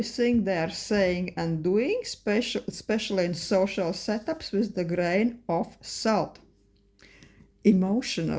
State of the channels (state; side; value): identical; both; correlation 1.00